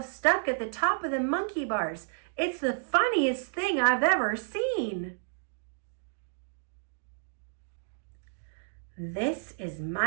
stuck at the top of the monkey bars. It's the funniest thing I've ever seen." "This is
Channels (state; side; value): silent; left; digital silence